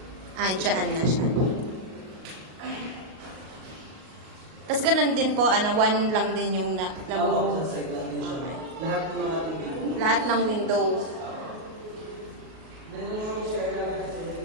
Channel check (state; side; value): late; left; 38 ms